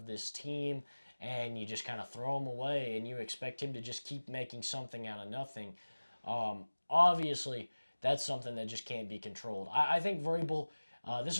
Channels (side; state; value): both; inverted; correlation -1.00